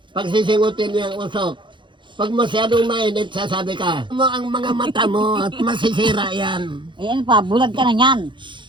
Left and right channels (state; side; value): late; left; 0.23 ms